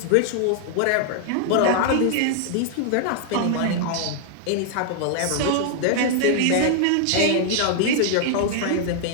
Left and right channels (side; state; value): both; different; correlation 0.00